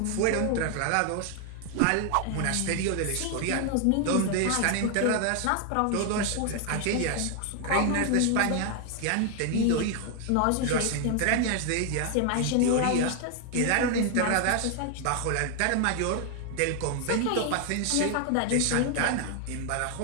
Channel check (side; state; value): both; different; correlation 0.00